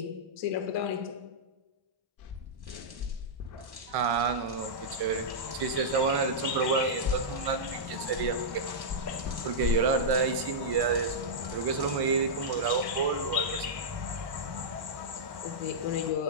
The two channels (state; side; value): late; left; 1.1 ms